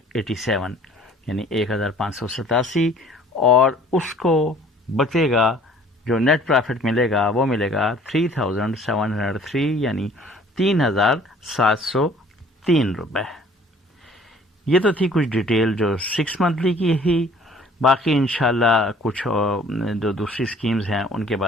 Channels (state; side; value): normal; both; correlation 0.54